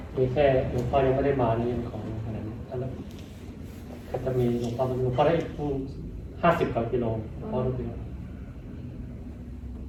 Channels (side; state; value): both; identical; correlation 1.00